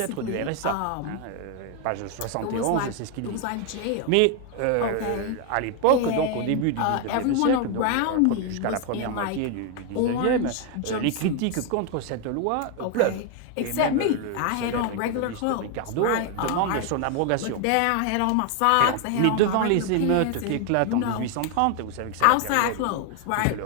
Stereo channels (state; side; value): different; both; correlation 0.01